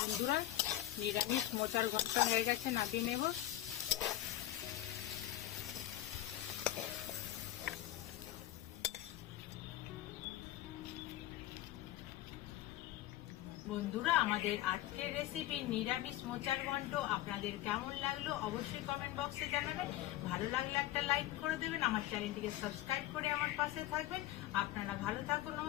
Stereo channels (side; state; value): right; quieter; 14.3 dB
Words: বন্ধুরা নিরামিষ মোচার ঘন্ট হয়ে গেছে, নামিয়ে নেব। বন্ধুরা, আমাদের আজকের রেসিপি নিরামিষ মোচার ঘন্ট আপনাদের কেমন লাগলো অবশ্যই কমেন্ট বক্সে জানাবেন। ভালো লাগলে একটা লাইক করে দেবেন, আমার চ্যানেলটিকে সাবস্ক্রাইব করে আমার পাশে থাকবেন। আপনারা ভালো থাকুন।